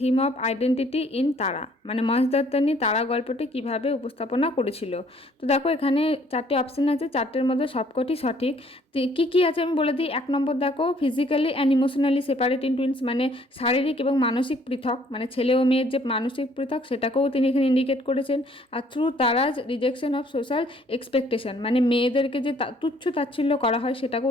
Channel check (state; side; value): normal; both; correlation 0.61